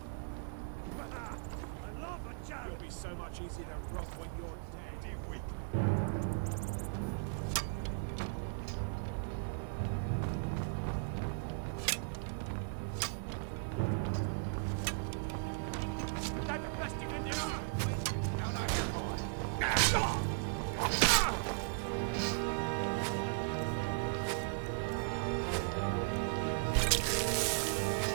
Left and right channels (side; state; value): left; silent; digital silence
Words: It'll be so much easier to rob when you're dead. You weak. That's the best you can do. Now, now, you're going.